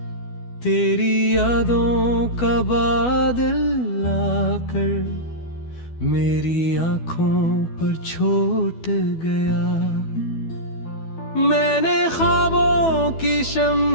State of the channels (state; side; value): late; right; 12 ms